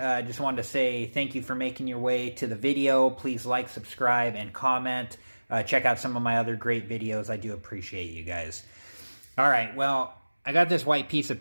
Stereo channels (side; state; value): both; inverted; correlation -1.00